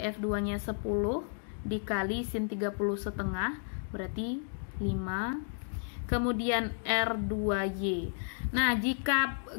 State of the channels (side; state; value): right; silent; digital silence